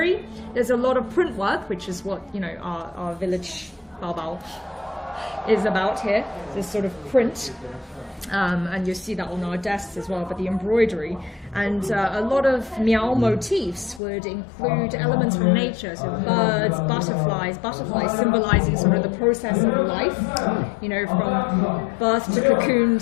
There's a lot of print work, which is what our village Baobao is about here. This sort of print, and you see that on our desks as well. But the embroidery. And a lot of Miao motifs would include elements from nature, so birds, butterflies symbolizing sort of the process of life, from birth to cocoon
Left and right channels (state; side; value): drops out; right; at 14.0 s